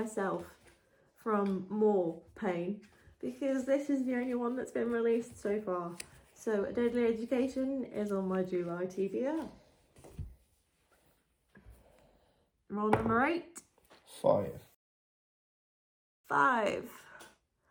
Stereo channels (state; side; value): identical; both; correlation 1.00